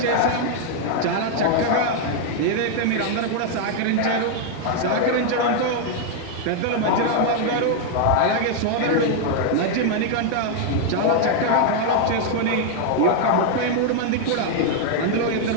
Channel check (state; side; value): different; both; correlation 0.00